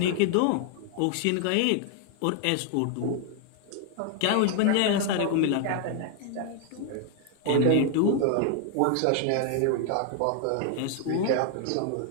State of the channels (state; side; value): different; both; correlation 0.00